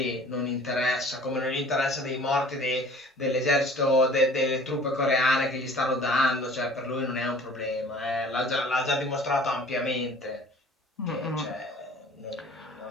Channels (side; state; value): both; normal; correlation 0.48